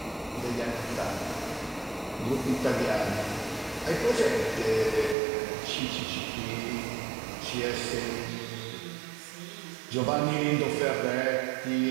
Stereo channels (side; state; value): left; drops out; at 5.2 s